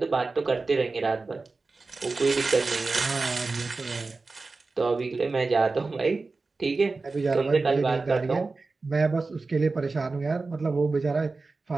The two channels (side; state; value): left; quieter; 3.8 dB